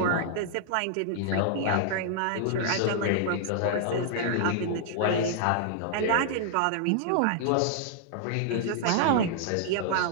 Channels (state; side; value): different; both; correlation -0.01